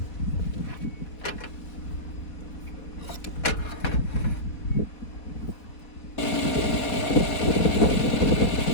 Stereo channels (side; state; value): right; late; 4.2 ms